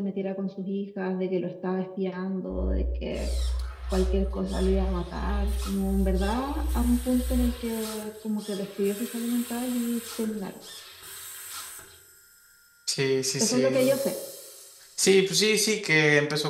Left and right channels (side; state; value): both; identical; correlation 1.00